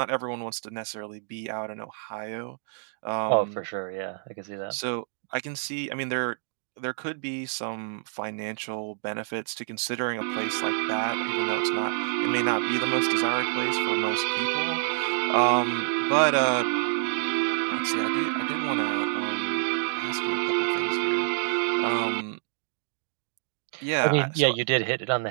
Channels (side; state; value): left; silent; digital silence